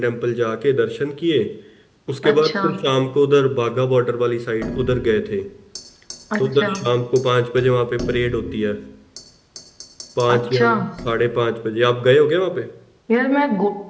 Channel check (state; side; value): identical; both; correlation 1.00